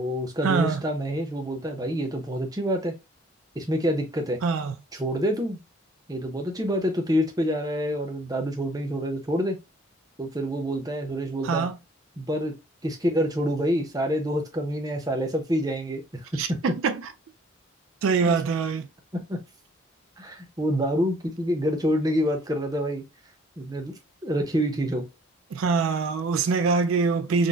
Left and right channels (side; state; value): both; normal; correlation 0.56